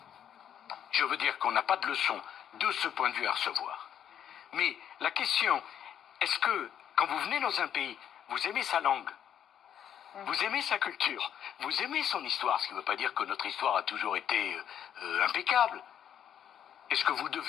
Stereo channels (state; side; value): quieter; right; 9.5 dB